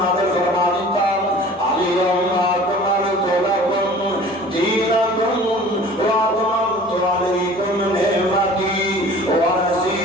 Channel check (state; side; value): normal; both; correlation 0.45